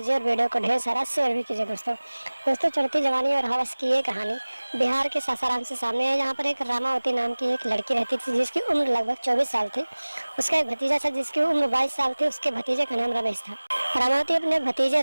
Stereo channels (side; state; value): both; inverted; correlation -1.00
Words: और वीडियो को ढेर सारा शेयर भी कीजिए। दोस्तों चढ़ती जवानी और हवस की ये कहानी बिहार के सासाराम से सामने है। यहाँ पर एक रामावती नाम की एक लड़की रहती थी जिसकी उम्र लगभग 24 साल थी। उसका एक भतीजा था जिसकी उम्र 22 साल थी। उसके भतीजे का नाम रमेश था। रामावती अपने भतीजे